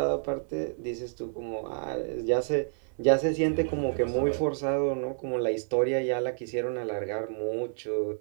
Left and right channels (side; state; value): left; silent; digital silence